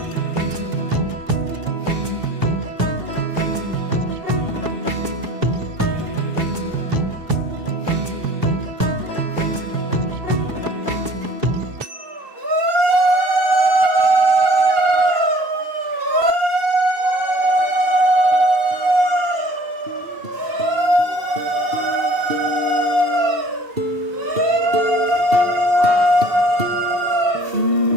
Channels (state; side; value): late; left; 2.7 ms